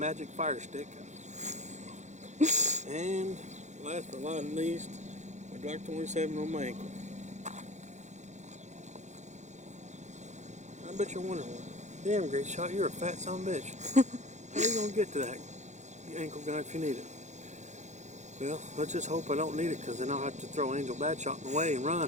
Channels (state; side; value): late; left; 0.34 ms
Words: Fire Stick, and last but not least, my Glock 27 on my ankle. I bet you're wondering, damn, Great Shot, you're a fat son of a bitch. How are you going to get to that ankle gun if you need it? Well, let's just hope I don't need it, because then I'll have to throw Angel Batshot in the way and